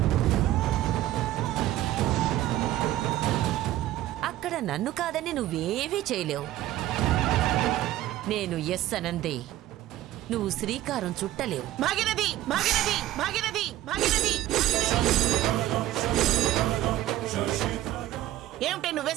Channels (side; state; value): left; quieter; 14.3 dB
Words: అక్కడ నన్ను కాదని నువ్వేవీ చేయలేవు. నేను ఎస్ అనందే నువ్వు శ్రీకారం చుట్టలేవు. భాగీరథి, భాగీరథి, భాగీరథి, భాగీరథి. ఏమిటే